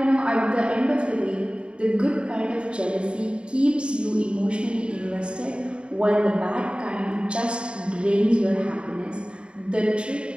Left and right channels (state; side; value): late; left; 0.054 ms